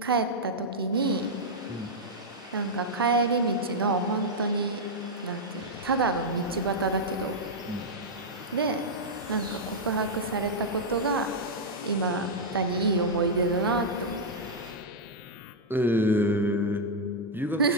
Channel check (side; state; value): both; normal; correlation -0.05